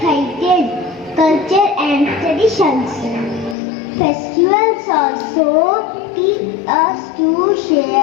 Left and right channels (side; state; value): right; drops out; at 3.6 s